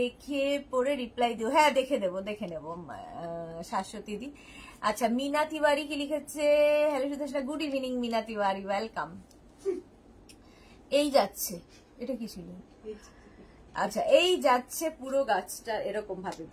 পরে রিপ্লাই দিও। হ্যাঁ দেখে নেব শাশ্বতী দি। আচ্ছা, মিনা তিওয়ারি কি লিখেছে, hello Sudesha, good evening Meena Tiwari, welcome. এই যাচ্ছে, এটা কি ছিল? আচ্ছা, এই যাচ্ছে পুরো গাছটা এরকম ভাবে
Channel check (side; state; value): both; identical; correlation 1.00